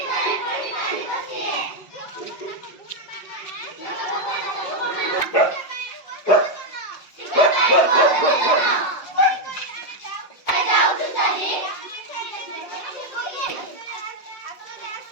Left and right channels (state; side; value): late; right; 5.3 ms